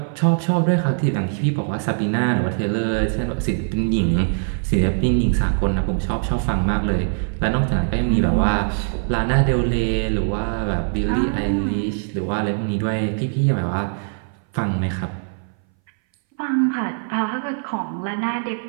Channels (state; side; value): silent; left; 61 dB below the other